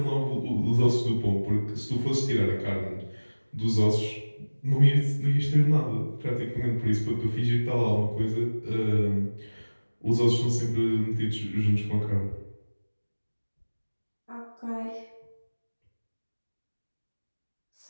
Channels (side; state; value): both; inverted; correlation -1.00